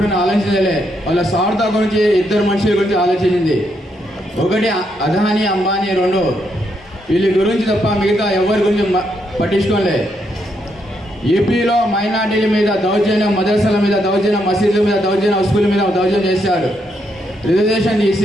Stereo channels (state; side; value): normal; both; correlation 0.78